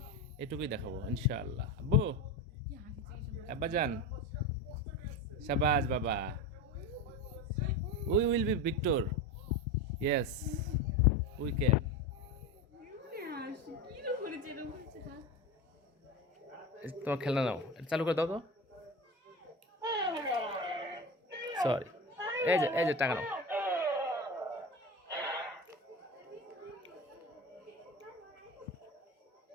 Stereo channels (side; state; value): both; normal; correlation 0.24